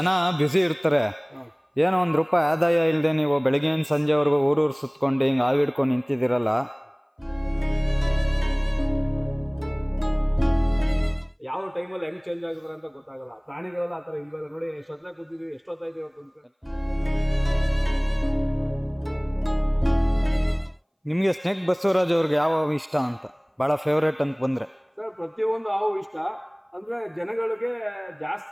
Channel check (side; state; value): both; identical; correlation 1.00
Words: ಬ್ಯುಸಿ ಇರ್ತಾರೆ. ಏನೋ ಒಂದು ರೂಪಾಯಿ ಆದಾಯ ಇಲ್ಲದೆ ನೀವು ಬೆಳಗ್ಗೆಯಿಂದ ಸಂಜೆವರೆಗೂ ಊರೂರು ಸುತ್ಕೊಂಡು ಹಿಂಗೆ ಆವಿಡ್ಕೊಂಡು ನಿಂತಿದ್ದೀರಲ್ಲ. ಯಾವ ಟೈಮಲ್ಲಿ ಹೆಂಗ್ ಚೇಂಜ್ ಆಗಿದ್ರೆ ಅಂತ ಗೊತ್ತಾಗಲ್ಲ. ಪ್ರಾಣಿಗಳೆಲ್ಲ ಆ ಥರ ಇಲ್ವಲ್ಲ ನೋಡಿ, ಎಷ್ಟೊತ್ತ ಕೂತಿದ್ವಿ, ಎಷ್ಟೊತ್ತಾಯ್ತು ಇವತ್ತು ಅಂತ. ನಿಮಗೆ ಸ್ನೇಕ್ ಬಸವರಾಜ್ ಅವ್ರಿಗೆ ಯಾವ ಇಷ್ಟ ಅಂತ, ಭಾಳ ಫೇವ್ರೇಟ್ ಅಂತ ಬಂದರೆ? ಸರ್, ಪ್ರತಿಯೊಂದು ಹಾವು ಇಷ್ಟ. ಅಂದ್ರೆ ಜನಗಳಿಗೆ